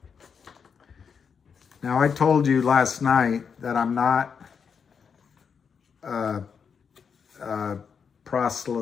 Now, I told you last night that I'm not a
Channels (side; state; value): right; quieter; 6.4 dB